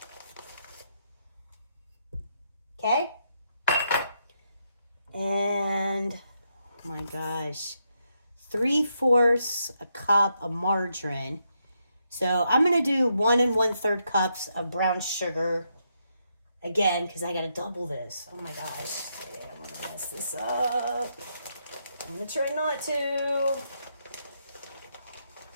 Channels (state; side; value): inverted; both; correlation -0.80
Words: Okay? And, oh my gosh, 3/4 a cup of margarine. So I'm going to do 1 1/3 cups of brown sugar. Again, because I got to double this. Oh my gosh. Yeah, I'm going to mess this up. I'm going to try not to.